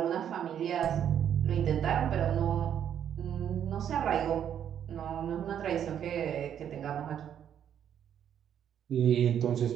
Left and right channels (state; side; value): quieter; left; 9.3 dB